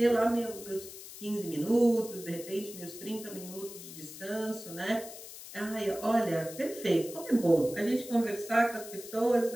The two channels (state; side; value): noise; left; hiss, 14 dB below the sound